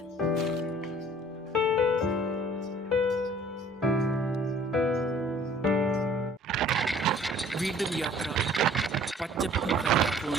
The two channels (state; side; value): normal; both; correlation 0.53